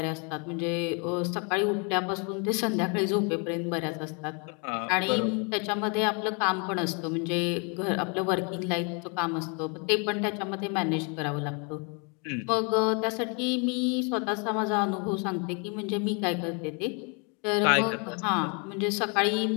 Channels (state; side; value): quieter; right; 35.0 dB